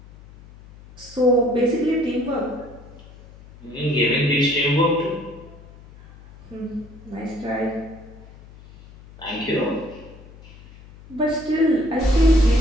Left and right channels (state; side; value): noise; left; hum, 21 dB below the sound